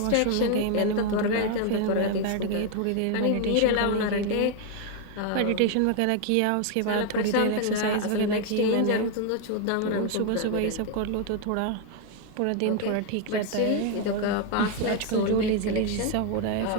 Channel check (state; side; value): different; both; correlation 0.01